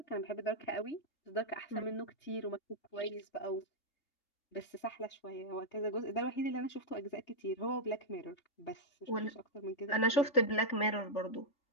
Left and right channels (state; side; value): late; right; 3.5 ms